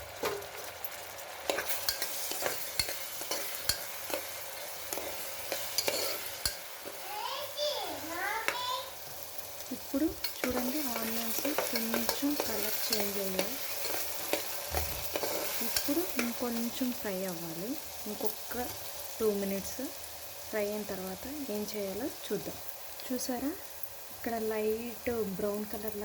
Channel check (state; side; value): identical; both; correlation 1.00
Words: ఇప్పుడు చూడండి, ఆనియన్స్ కొంచెం కలర్ చేంజ్ అయ్యాయి. ఇప్పుడు ఇంకొంచెం ఫ్రై అవ్వాలి. ఇంకొక 2 మినిట్స్ ఫ్రై అయిన తర్వాత ఏం చేయాలో చూద్దాం. చూసారా, ఇక్కడ లైట్ బ్రౌన్